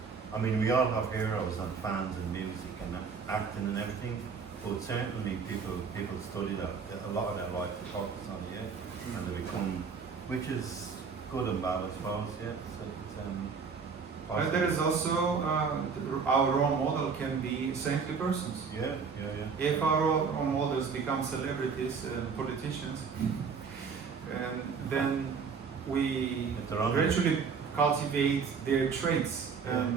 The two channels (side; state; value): left; quieter; 5.7 dB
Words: I mean, we all have heroes and fans in music and acting and everything, but certainly people study that a lot of their life to focus on, yeah, and they become, which is good and bad, I suppose, yeah. So it's And there is also our role model can be saintly persons. Yeah. If our role models become celebrities and politicians, and then we If they're on gradually cultivate their traits,